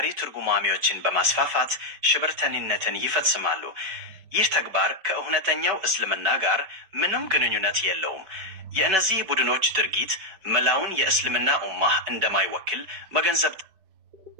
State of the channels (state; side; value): late; left; 4.9 ms